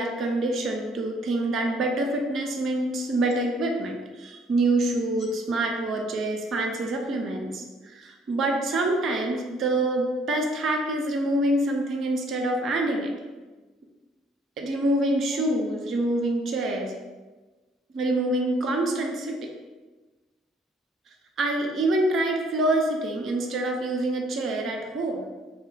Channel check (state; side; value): normal; both; correlation 0.62